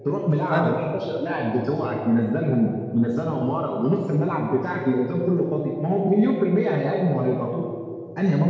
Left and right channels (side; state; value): both; identical; correlation 1.00